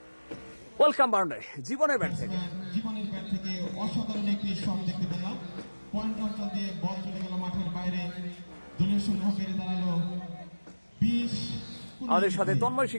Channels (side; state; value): both; inverted; correlation -1.00